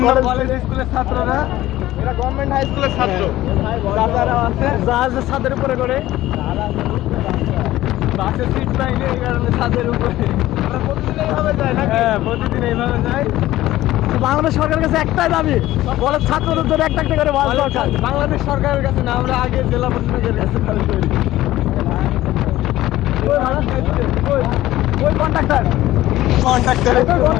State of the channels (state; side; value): quieter; right; 15.5 dB